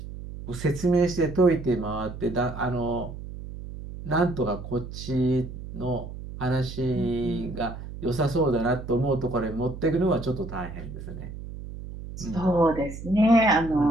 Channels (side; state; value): right; noise; hum, 11 dB below the sound